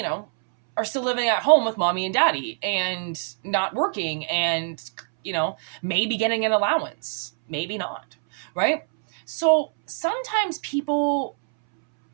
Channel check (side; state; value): left; silent; 62 dB below the other